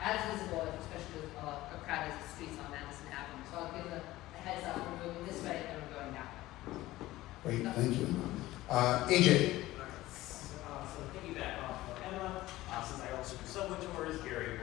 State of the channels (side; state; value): right; quieter; 17.0 dB